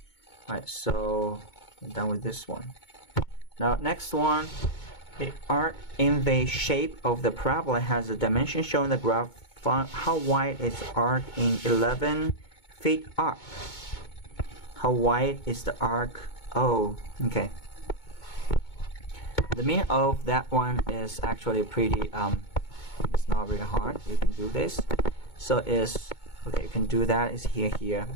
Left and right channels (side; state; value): right; late; 2.2 ms